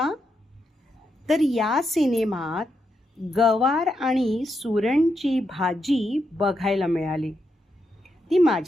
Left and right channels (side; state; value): both; normal; correlation 0.82